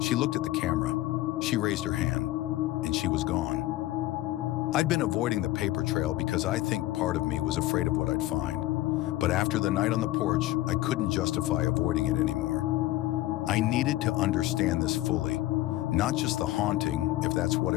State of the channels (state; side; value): quieter; right; 16.3 dB